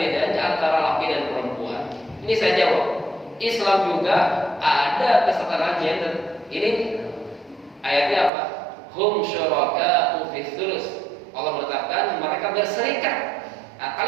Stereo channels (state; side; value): drops out; left; at 8.3 s